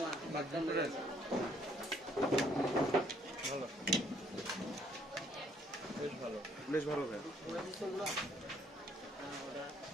বেশ ভালো ভাই।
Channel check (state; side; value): normal; both; correlation 0.65